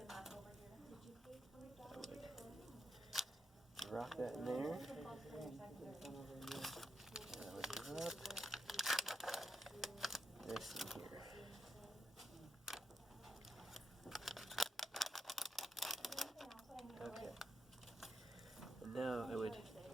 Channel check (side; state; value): both; normal; correlation 0.83